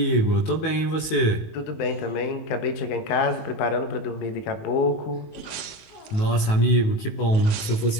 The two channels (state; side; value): late; right; 19 ms